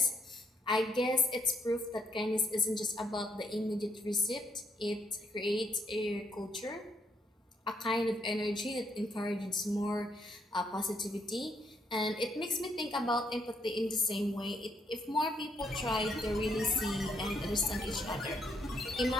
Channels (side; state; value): both; normal; correlation 0.73